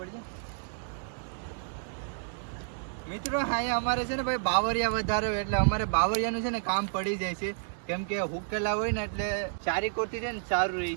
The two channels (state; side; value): silent; left; digital silence